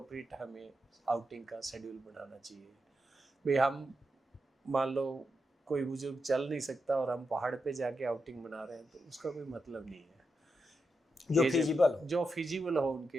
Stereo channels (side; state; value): both; normal; correlation 0.86